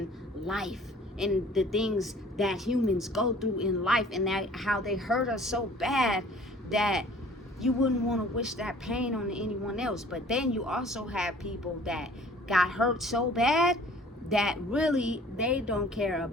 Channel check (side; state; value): both; normal; correlation 0.51